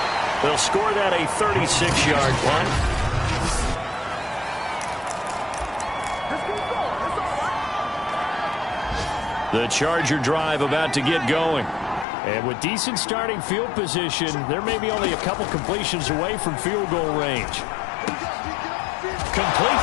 They'll score that a 36-yard punt. The Charger drive about to get going. And with decent starting field position, there may be only a couple completions away from field goal range. Complete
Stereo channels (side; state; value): right; drops out; at 12.1 s